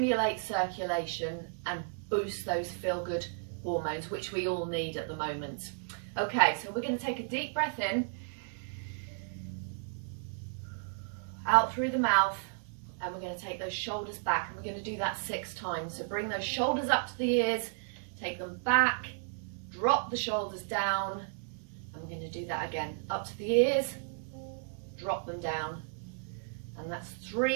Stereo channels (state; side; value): silent; left; digital silence